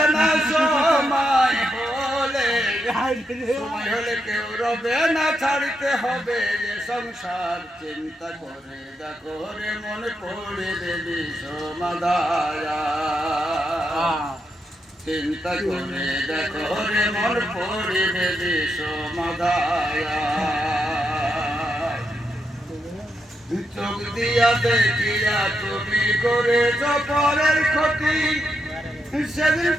না সময় হলে কেউ রবে না ছাড়তে হবে যে সংসার চিন্তা করে দেখো রে মন পড়ে দেবী সমাদায়া চিন্তা করে দেখো রে মন পড়ে দেবী সমাদায়া চোখ দিয়া দেখিয়া তুমি করেছ পরের ক্ষতি সেদিন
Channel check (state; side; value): normal; both; correlation 0.83